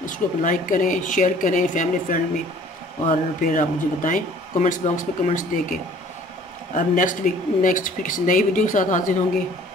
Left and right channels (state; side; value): normal; both; correlation 0.52